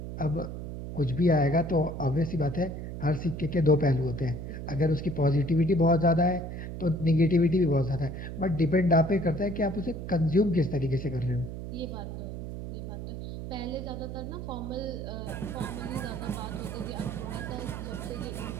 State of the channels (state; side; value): noise; right; hum, 7 dB below the sound